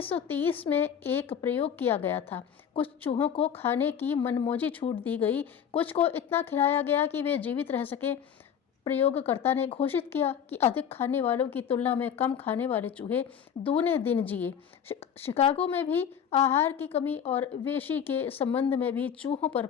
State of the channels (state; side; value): quieter; right; 8.2 dB